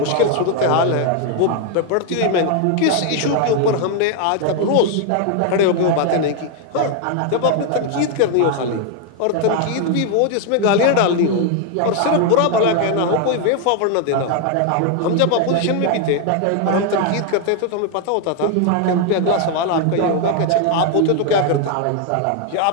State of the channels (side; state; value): both; different; correlation 0.00